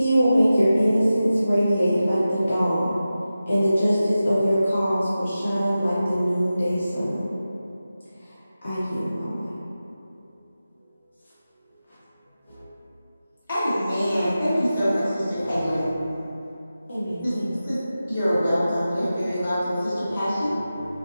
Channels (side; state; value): both; inverted; correlation -0.94